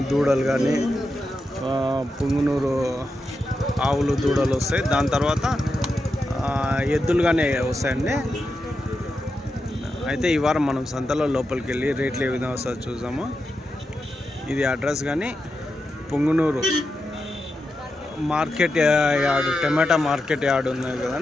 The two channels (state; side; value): normal; both; correlation 0.88